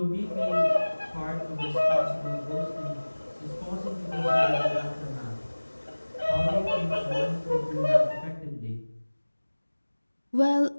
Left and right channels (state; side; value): inverted; both; correlation -1.00